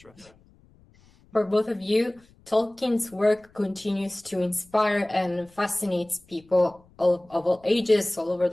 For both of you, Tolkien's work continues to inspire and fascinates people of all ages all over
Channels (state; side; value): noise; left; rumble, 29 dB below the sound